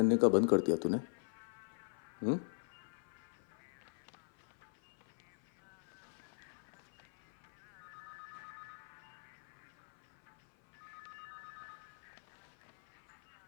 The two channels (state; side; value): silent; right; 50 dB below the other